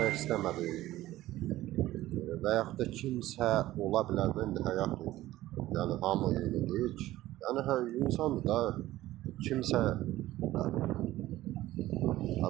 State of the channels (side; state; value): left; quieter; 15.7 dB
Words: istəmədim və yaxud da kimsə ola bilər də, indi həyatdır, yəni hamı eyni deyil ki. Yəni insandır da, kimsə